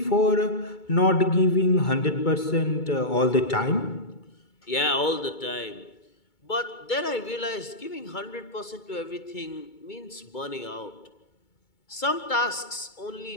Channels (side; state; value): right; late; 2.2 ms